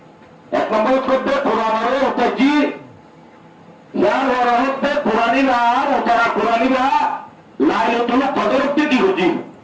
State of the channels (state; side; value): identical; both; correlation 1.00